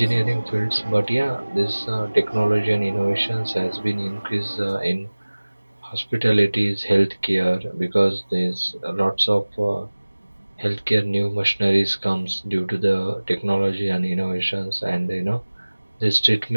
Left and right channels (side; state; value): both; inverted; correlation -1.00